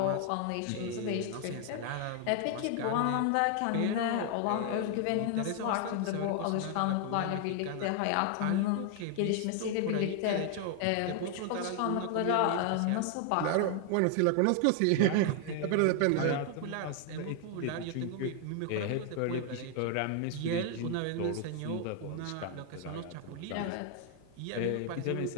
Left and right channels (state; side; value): different; both; correlation 0.00